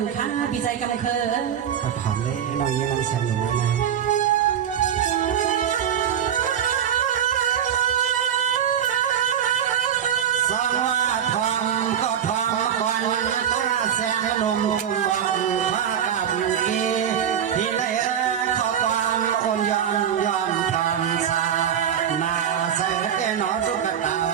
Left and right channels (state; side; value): quieter; left; 9.1 dB